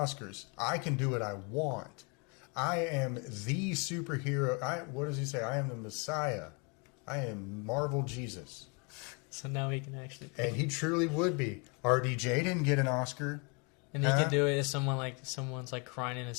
I can do what I want. I am the superhero. What does he say? I am the Messiah. I am Marvel Jesus. So now he can actually and he truly would be. RDJ didn't get an Oscar. And he could do it if someone's like crying in a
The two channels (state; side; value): quieter; right; 33.3 dB